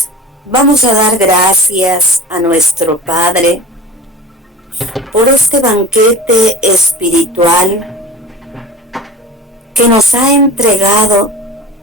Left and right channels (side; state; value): both; normal; correlation 0.37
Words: vamos a dar gracias a nuestro Padre por este banquete espiritual que nos ha entregado